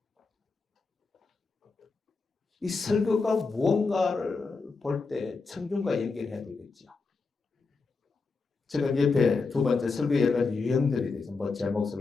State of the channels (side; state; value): right; quieter; 4.3 dB